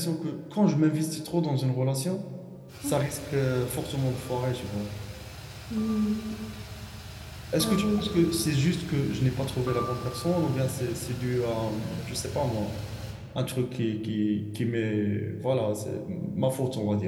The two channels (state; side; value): identical; both; correlation 1.00